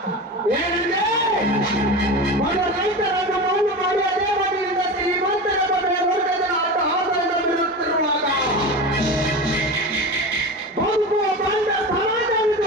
ಏನಂದ್ರೆ ಬಡ ರೈತರನ್ನು ಮೌಲ್ಯ ಮಾಡಿ ಅದೇ ಮನೆಯಿಂದ ಶ್ರೀಮಂತರ ಮನೆಯ ವರ್ಗದ ಆಟ ಆದಾಯ ಬಿಡುತ್ತಿರುವಾಗ ಬದುಕುವ ಬಂದ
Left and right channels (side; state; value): both; normal; correlation 0.27